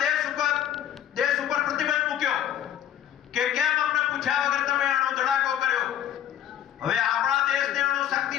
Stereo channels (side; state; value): right; quieter; 10.8 dB